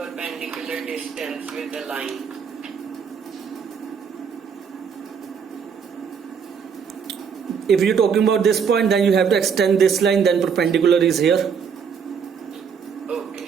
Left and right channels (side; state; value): left; quieter; 6.7 dB